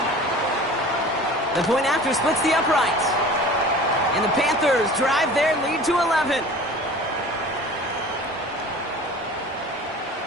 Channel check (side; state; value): both; normal; correlation 0.41